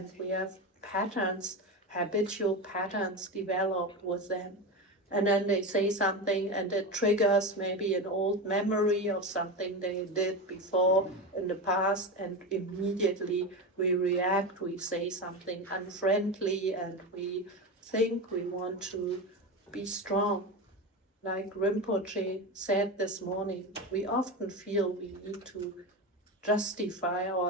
we have habitual patterns developed with them. And then they say something and it triggers maybe an old memory of something they did before in the past, and immediately we react, we say something unfriendly, and we think we want to be strong. Like Rinpoche said this morning, we often feel we need to justify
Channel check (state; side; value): normal; both; correlation 0.20